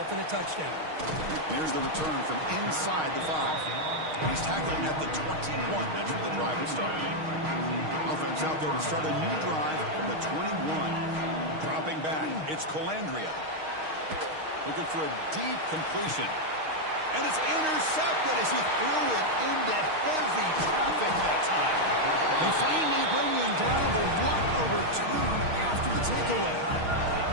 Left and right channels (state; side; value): late; left; 6.4 ms